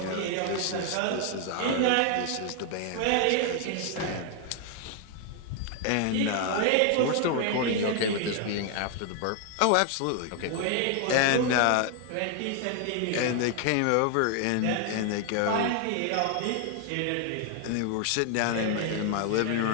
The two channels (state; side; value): different; both; correlation 0.00